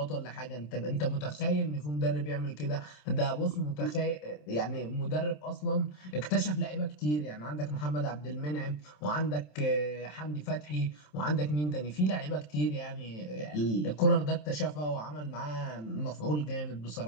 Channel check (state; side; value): late; right; 27 ms